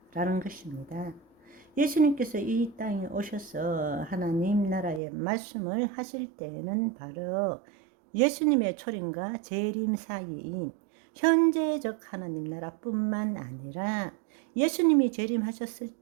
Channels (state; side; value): drops out; left; at 5.0 s